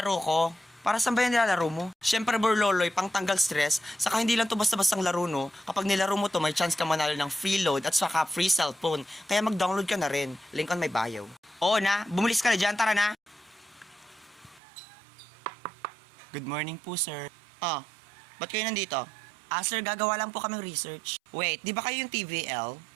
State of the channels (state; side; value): drops out; left; at 14.6 s